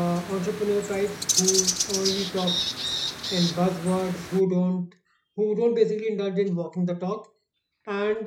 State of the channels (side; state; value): both; identical; correlation 1.00